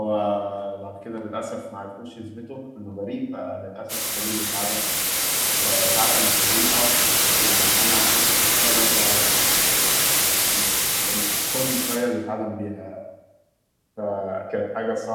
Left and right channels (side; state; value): both; identical; correlation 1.00